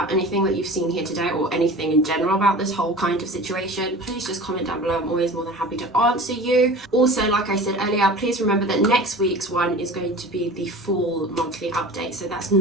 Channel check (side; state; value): both; normal; correlation 0.38